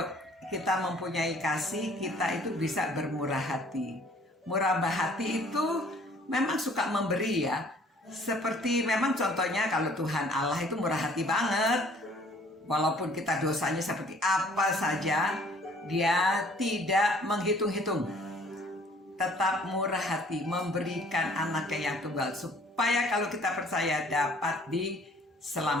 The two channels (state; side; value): normal; both; correlation 0.56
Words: kita mempunyai kasih, kita itu bisa bermurah hati. Murah hati itu memang suka memberi, ya. Seperti memang contohnya kalau Tuhan Allah itu murah hati banget. Walaupun kita dosanya seperti apa saja, Dia tidak menghitung-hitung. Tetap murah hati, memberikan anaknya yang tunggal supaya kalau kita percaya dapat